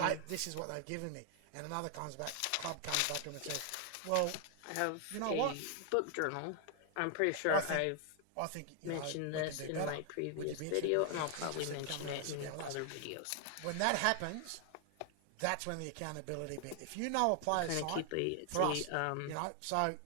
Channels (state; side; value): different; both; correlation 0.00